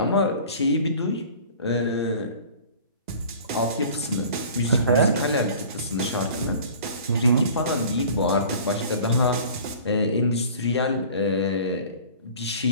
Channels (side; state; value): both; inverted; correlation -0.45